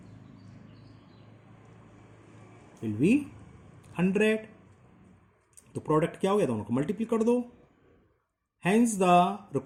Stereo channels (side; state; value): both; identical; correlation 1.00